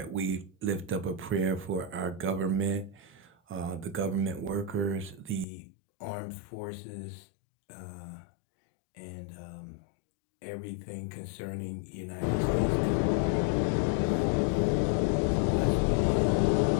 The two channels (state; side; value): drops out; right; at 5.5 s